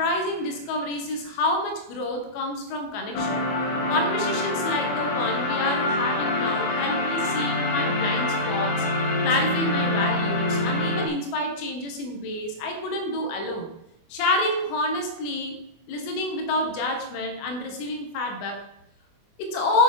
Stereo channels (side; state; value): right; late; 24 ms